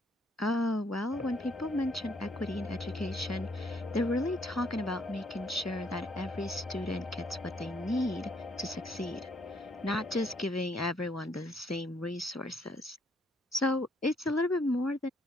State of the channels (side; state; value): both; normal; correlation 0.68